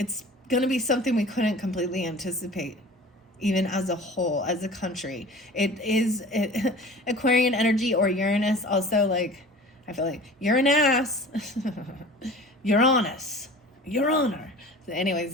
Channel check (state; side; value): normal; both; correlation 0.41